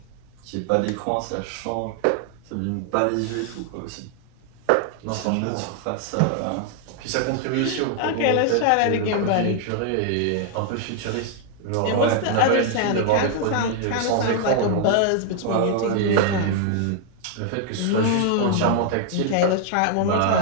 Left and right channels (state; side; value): different; both; correlation 0.00